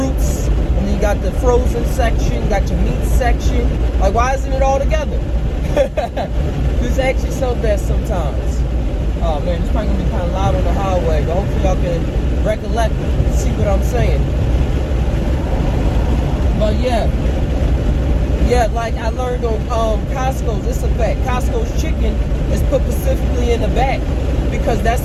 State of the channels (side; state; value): both; identical; correlation 1.00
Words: and then you got the frozen section, you got your meat section. Like, why isn't it all together? Just ask yourself that sometimes. Oh man, it's probably gonna be kind of loud on the highway, but hopefully y'all can recollect and see what I'm saying. But yeah, like I learned on Costco's, it's a fact. Costco's chicken is put specifically in the back because that's